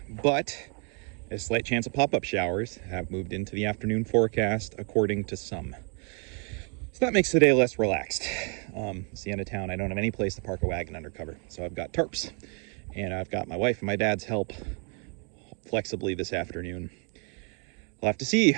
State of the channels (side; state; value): left; quieter; 36.5 dB